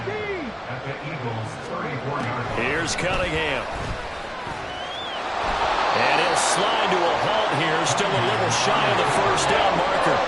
at the Eagles' 34-yard line. Here's Cunningham. And he'll slide to a halt here. Still a little shy of the 1st down marker.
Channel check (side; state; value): both; identical; correlation 1.00